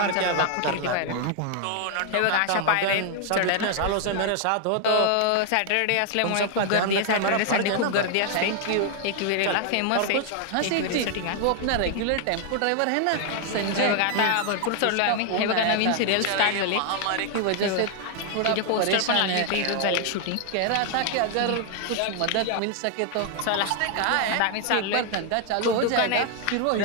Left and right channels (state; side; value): different; both; correlation 0.00